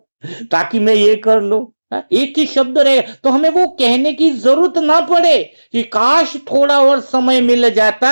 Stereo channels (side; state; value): both; inverted; correlation -1.00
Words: ताकि मैं ये कर लो। हाँ, एक ही शब्द रहेगा तो हमें वो कहने की जरूरत ना पड़े कि काश थोड़ा और समय मिल